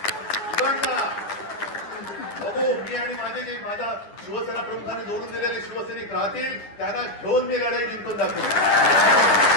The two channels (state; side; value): late; right; 9.9 ms